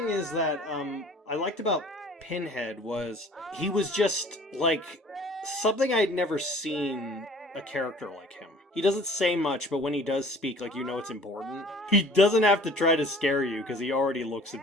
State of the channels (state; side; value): normal; both; correlation 0.49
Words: is that I liked about Pinhead was he was just like something I'd never seen a character like him. He doesn't say much, but when he does speak, like, you know it's important. He doesn't have to try to scare you because he already looks